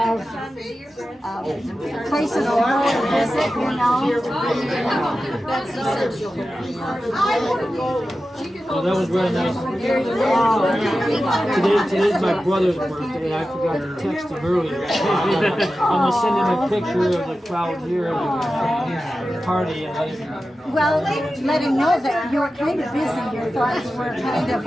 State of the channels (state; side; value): normal; both; correlation 0.93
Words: places to go and visit, you know. That's essential. Well, that was very nice. Today's my brother's birthday. I forgot to text him earlier. I'm gonna send him a picture of the crowd here at the party and let him. Well, let him know that you're kind of busy. Your thoughts were kind of